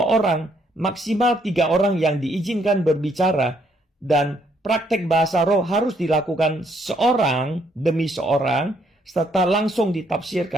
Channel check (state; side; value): normal; both; correlation 0.70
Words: orang, maksimal 3 orang yang diizinkan berbicara, dan praktek bahasa roh harus dilakukan seorang demi seorang, serta langsung